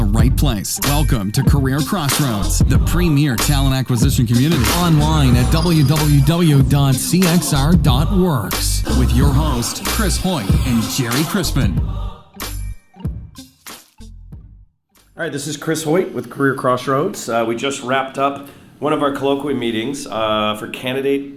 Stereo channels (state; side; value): identical; both; correlation 1.00